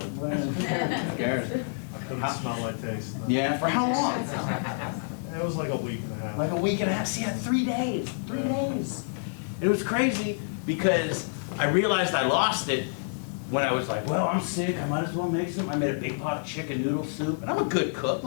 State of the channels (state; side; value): silent; right; digital silence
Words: But who cares? I couldn't smell my taste. Yeah, for how long? It was like a week and a half. Like a week and a half. See, 3 days. 3 days. It was crazy because I realized I lost it when I was like, well, I'm sick, I might as well make some. I made a big pot of chicken noodle soup, and I'm a good cook.